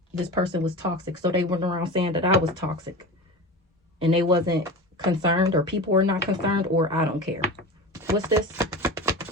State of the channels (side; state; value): both; normal; correlation 0.30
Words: This person was toxic. So they went around saying that I was toxic. And they wasn't concerned, or people were not concerned, or I don't care. What's this?